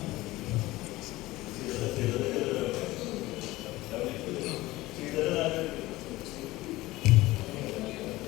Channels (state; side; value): quieter; right; 18.6 dB